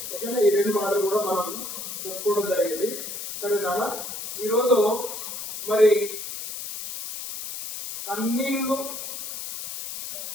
ఓకేనా? ఈ రెండు మాటలు కూడా మనం చెప్పుకోవడం జరిగింది. సరేనా? ఈరోజు మరి కన్నీళ్లు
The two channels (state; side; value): noise; left; hiss, 8 dB below the sound